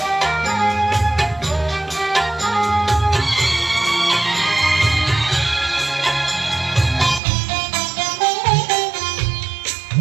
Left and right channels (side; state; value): left; drops out; at 7.2 s